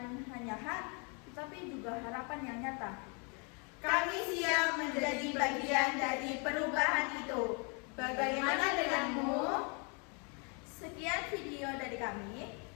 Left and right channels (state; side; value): quieter; right; 34.8 dB